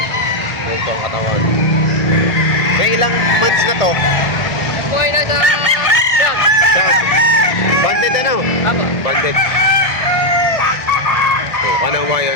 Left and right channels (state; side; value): late; right; 1.5 ms